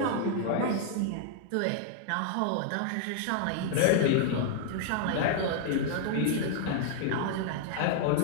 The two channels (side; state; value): both; different; correlation 0.00